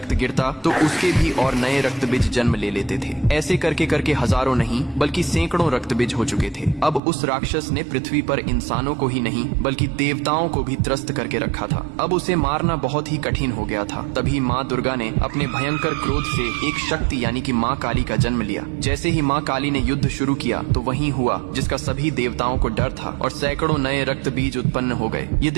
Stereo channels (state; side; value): drops out; left; at 7.0 s